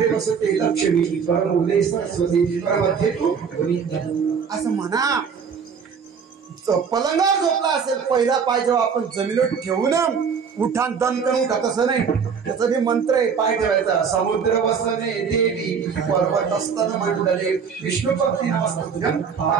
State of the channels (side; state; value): left; quieter; 6.4 dB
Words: बसते लक्ष्मी परमोले सरस्वती परमध्ये तू असं म्हणा. पलंगावर झोपला असेल, पहिला पाय जेव्हा आपण जमिनीवर ठेवून उठान दन करून उठा, तसं नाही. त्याचा बी मंत्र आहे. पाय ठेवायचा. समुद्र वसने देवी पर्वत असताना मंडले विष्णू पत्नी नमस्ते